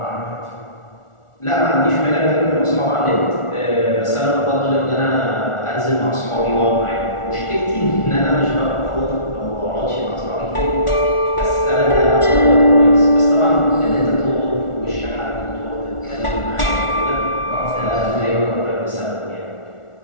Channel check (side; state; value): right; late; 1.4 ms